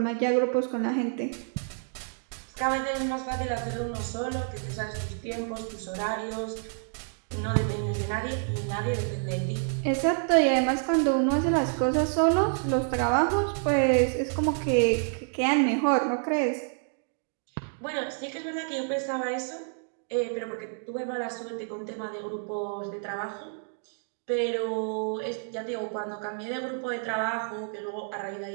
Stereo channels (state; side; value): silent; left; 59 dB below the other